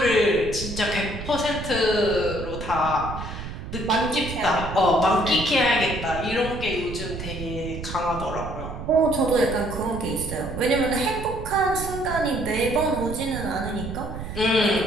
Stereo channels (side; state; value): right; noise; rumble, 8 dB below the sound